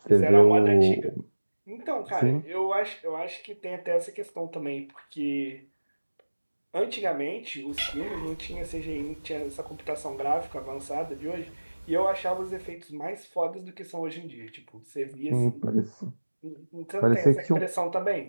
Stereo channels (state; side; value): inverted; both; correlation -1.00